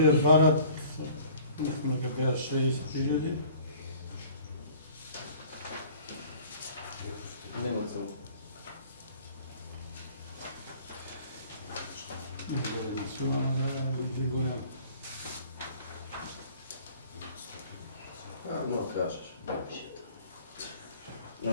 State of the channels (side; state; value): both; inverted; correlation -0.51